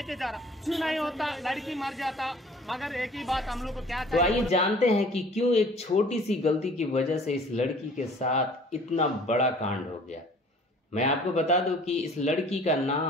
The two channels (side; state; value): both; normal; correlation 0.51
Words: जा रहा, क्यों नहीं होता, लड़की मर जाता। मगर एक ही बात हम लोग को क्या तो आइए जानते हैं कि क्यों एक छोटी सी गलती की वजह से इस लड़की के साथ इतना बड़ा कांड हो गया। मैं आपको बता दूं कि इस लड़की का